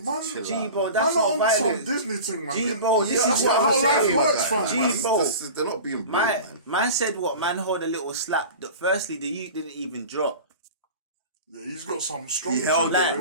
to chill G, out, bro, man. that's not violence. Some Disney thing, man. G, bro, this that's is what how I'm life saying. works, fam. G, bro. They're not being brave, man. Man said what? Man hold a little slap. Firstly, the youth didn't even drop. Yeah, he's got some strong. He held it,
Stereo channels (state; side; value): inverted; both; correlation -0.35